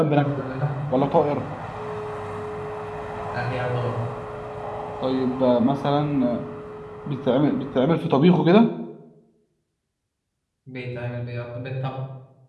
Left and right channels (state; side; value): identical; both; correlation 1.00